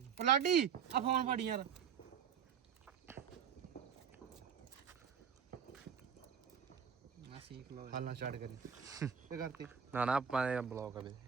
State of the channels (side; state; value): left; quieter; 7.5 dB